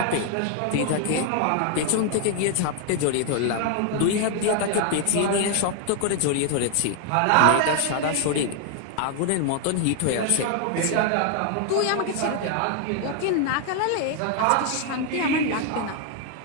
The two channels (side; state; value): both; different; correlation 0.00